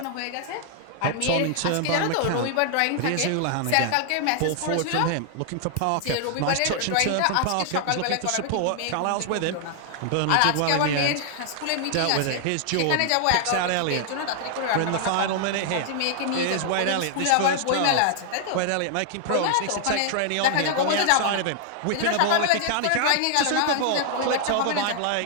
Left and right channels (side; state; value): both; different; correlation 0.00